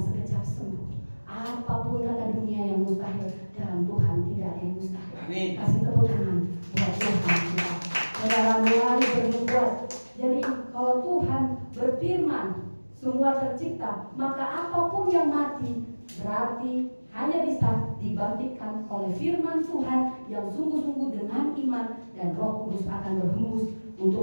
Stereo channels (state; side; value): inverted; both; correlation -1.00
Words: sembuh. Apapun kata dunia yang mustahil, dalam Tuhan tidak ada yang mustahil. Amin. Kasih tepuk tangan buat Tuhan kita. Saudara mulai berbuat. Jadi kalau Tuhan berfirman semua tercipta, maka apapun yang mati berarti hanya bisa dibangkitkan oleh firman Tuhan yang sungguh-sungguh dengan iman, dan Roh Kudus akan berhembus